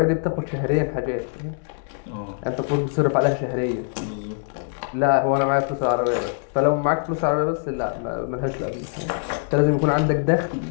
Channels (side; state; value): right; silent; digital silence